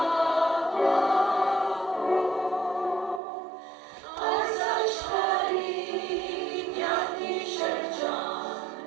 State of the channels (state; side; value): drops out; left; at 3.2 s